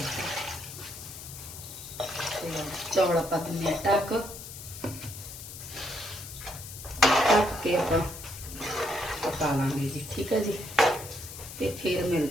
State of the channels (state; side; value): noise; left; hiss, 12 dB below the sound